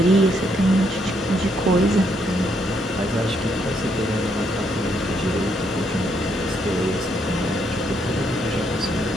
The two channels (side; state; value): both; normal; correlation 0.74